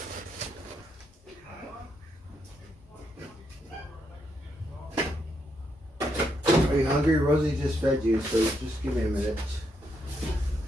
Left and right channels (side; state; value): both; normal; correlation 0.78